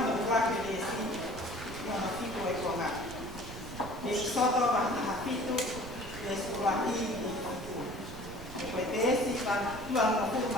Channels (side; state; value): right; noise; rumble, 12 dB below the sound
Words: no wake le si. Ia no hito e konga. E iksoto wahi hapito. E suruahi i hito. E koe te esi ka tuang no